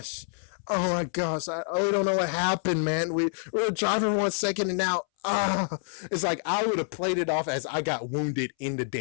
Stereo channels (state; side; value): silent; right; 60 dB below the other